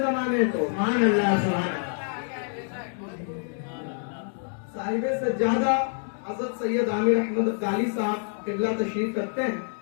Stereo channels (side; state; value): right; silent; 60 dB below the other